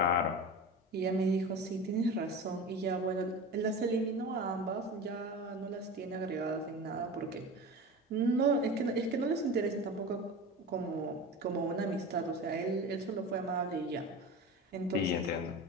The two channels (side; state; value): both; normal; correlation 0.30